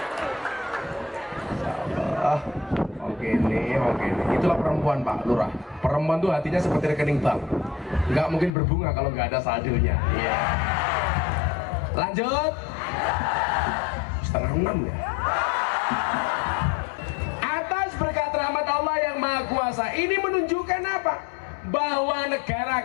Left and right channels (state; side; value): drops out; right; at 8.5 s